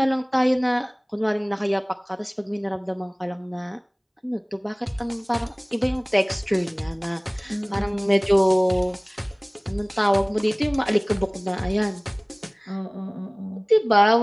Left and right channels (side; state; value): both; identical; correlation 1.00